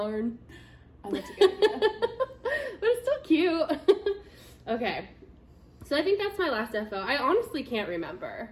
Oh, that's a good idea. But it's still cute. Okay. So I think that's my last FO. I honestly can't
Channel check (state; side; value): identical; both; correlation 1.00